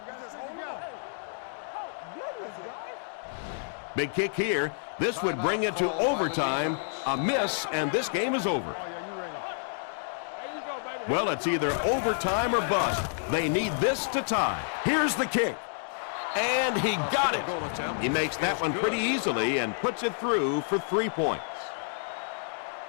Big kick here. This would bring it to overtime. A miss, and this game is over. Well, it's either overtime or bust. They need this to tie. Here's the kick. And he got it. He makes that one pretty easily and puts it through for 3 points.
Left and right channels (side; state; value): right; silent; digital silence